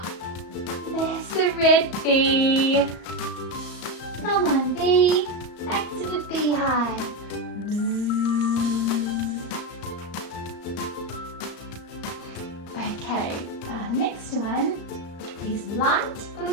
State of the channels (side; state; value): right; late; 35 ms